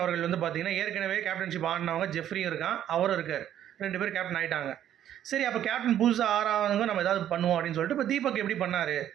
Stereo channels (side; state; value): left; quieter; 11.0 dB